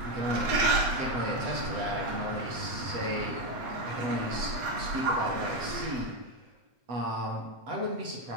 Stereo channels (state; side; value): late; left; 8.1 ms